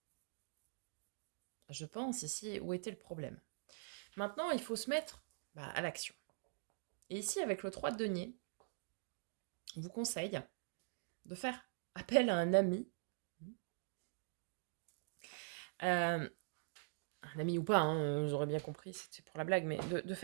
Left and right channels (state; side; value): silent; left; digital silence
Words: je pense, ici, où était le problème. Maintenant, il faut se mettre à l'action. Et ici, avec le 3 de denier, on vous conseille de faire appel à un ami, euh, un ami ou pas, hein, j'aurais bien compris, c'était pour la blague, mais de